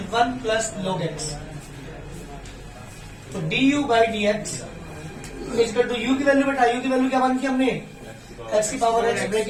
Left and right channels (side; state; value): both; identical; correlation 1.00